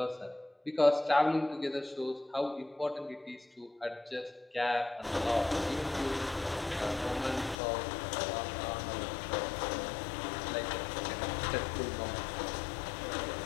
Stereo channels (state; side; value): drops out; right; at 7.6 s